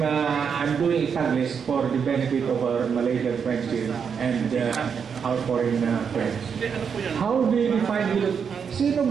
doing Taglish for the benefit of our Malaysian friends here and our foreign friends. How do you define hilot? Sino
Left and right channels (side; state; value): left; quieter; 6.7 dB